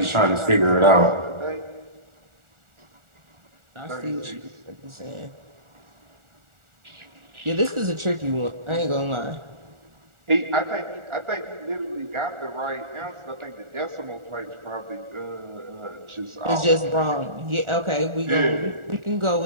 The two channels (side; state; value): left; late; 1.4 ms